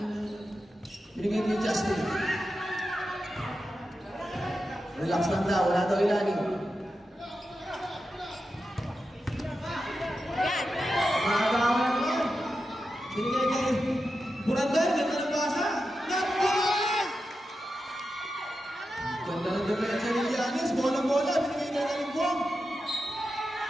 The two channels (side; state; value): both; normal; correlation 0.90